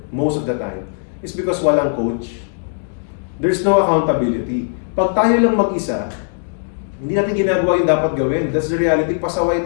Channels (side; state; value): right; silent; digital silence